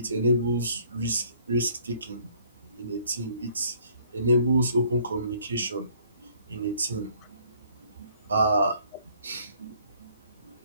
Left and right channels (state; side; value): inverted; both; correlation -0.61